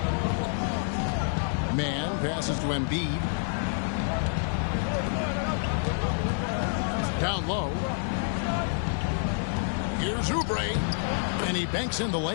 Man passes to Embiid. Down low. Here's Oubre, and he banks in the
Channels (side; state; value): right; silent; 59 dB below the other